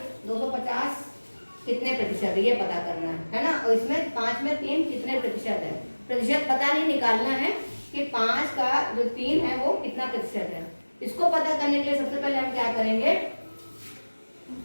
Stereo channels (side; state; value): both; inverted; correlation -1.00